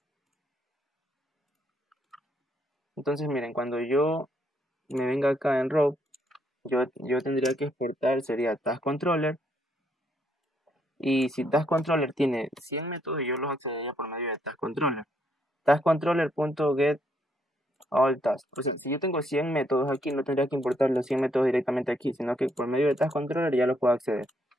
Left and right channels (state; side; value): normal; both; correlation 0.73